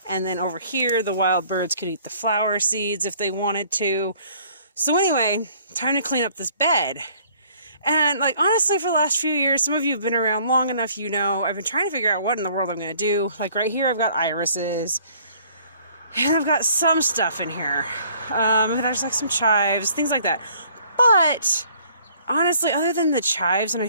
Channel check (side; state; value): both; inverted; correlation -0.58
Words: And then over here, the wild birds could eat the flower seeds if they wanted to. So anyway, time to clean up this bed. And like honestly, for the last few years, some of you have been around long enough, you know, I've been trying to figure out what in the world I'm going to do. Like right here, I've got irises. And I've got some stuff in here. There's like some chives, things like that. But honestly, other than the chives,